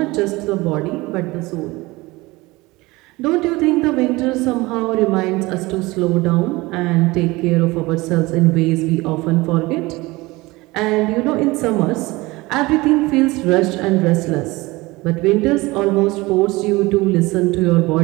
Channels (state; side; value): quieter; left; 21.6 dB